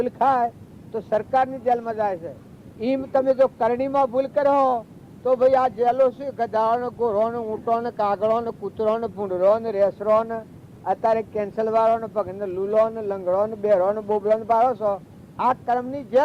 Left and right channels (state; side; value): identical; both; correlation 1.00